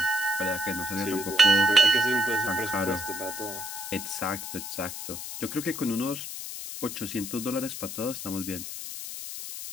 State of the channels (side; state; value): left; noise; hiss, 8 dB below the sound